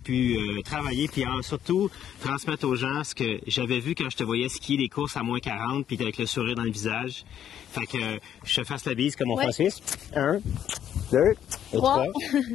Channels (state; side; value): quieter; right; 10.0 dB